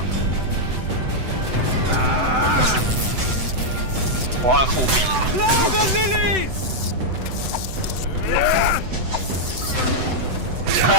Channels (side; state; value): left; late; 7.9 ms